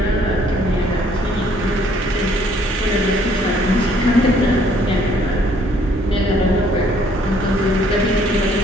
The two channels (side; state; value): both; normal; correlation 0.63